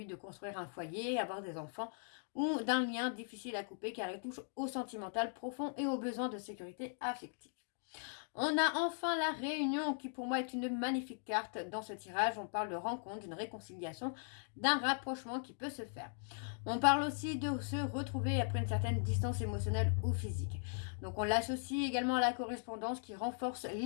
de construire un foyer, avoir des enfants, ou d'un lien difficile à couper car il touche au sentimental profond et aux besoins de sécurité affective. On a enfin la réunion qui pour moi est une magnifique carte dans ce tirage. On parle de rencontre, d'une réconciliation, d'un rapprochement qui peut se faire. On parle aussi de se retrouver après une certaine distance émotionnelle ou physique. Donc on l'associe également à la correspondance qui renforce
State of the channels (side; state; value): right; silent; digital silence